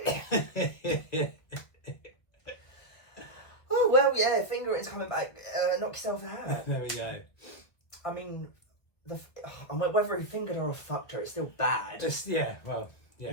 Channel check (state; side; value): late; right; 1.8 ms